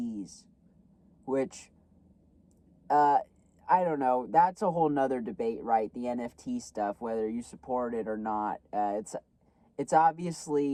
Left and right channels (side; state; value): both; identical; correlation 1.00